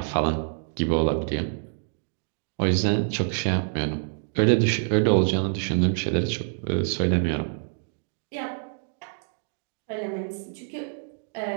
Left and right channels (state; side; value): silent; left; digital silence